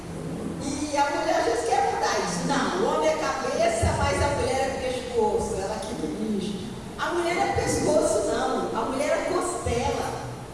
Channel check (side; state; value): both; identical; correlation 1.00